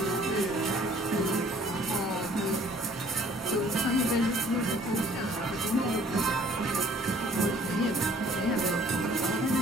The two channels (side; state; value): both; normal; correlation 0.56